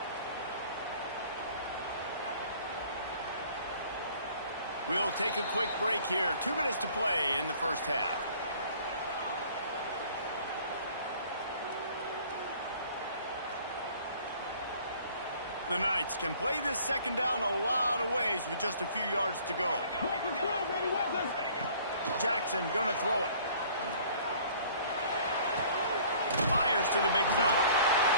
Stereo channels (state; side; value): inverted; both; correlation -0.53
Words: We'll take a quick break here. 2 minutes to play in the first half. The Knights can play this second down a lot of ways with just a few yards to go. Jackson gonna throw it. Fires to the big fella.